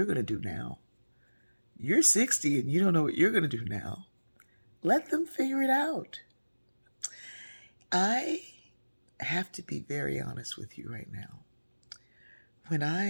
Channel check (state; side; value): inverted; both; correlation -1.00